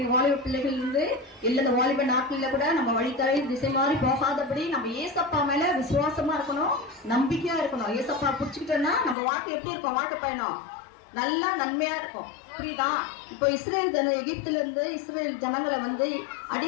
வாலிப பிள்ளைகள் இருந்து இல்ல இந்த வாலிப நாட்கள்ல கூட நம்ம வழித்தலை திசை மாறி போகாதபடி நம்ம ஏசப்பா மேல விசுவாசமா இருக்கணும், நம்பிக்கையா இருக்கணும். ஏசப்பா புடிச்சுக்கிட்டோம்னா நம்ம வாழ்க்கை எப்படி இருக்கும்? வாழ்க்கை பயணம் நல்லா நன்மையா இருக்கும். புரியுதா? இப்போ எகிப்துல இருந்து இஸ்ரேல் ஜனங்களை வந்து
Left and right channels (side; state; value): right; drops out; at 9.2 s